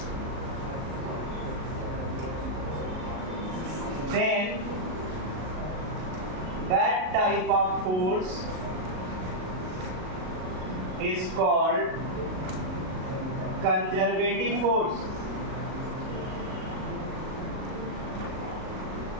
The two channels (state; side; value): late; left; 38 ms